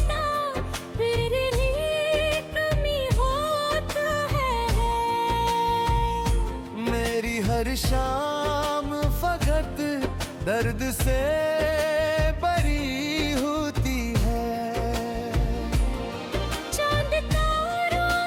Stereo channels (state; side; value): identical; both; correlation 1.00